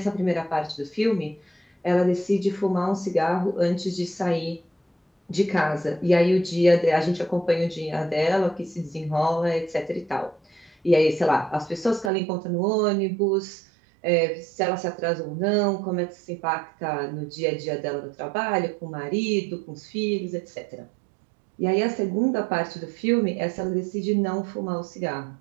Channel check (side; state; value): left; drops out; at 12.1 s